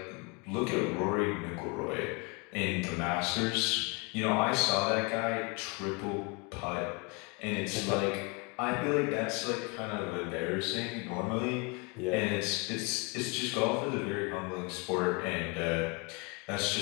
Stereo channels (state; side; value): quieter; right; 30.1 dB